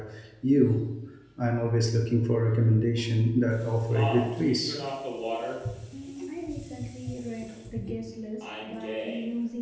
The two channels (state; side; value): identical; both; correlation 1.00